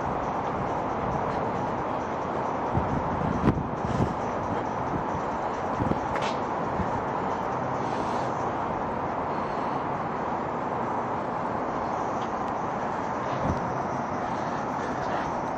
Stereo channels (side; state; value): both; identical; correlation 1.00